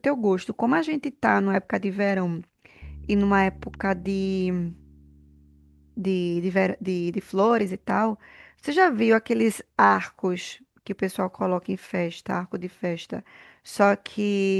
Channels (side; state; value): both; identical; correlation 1.00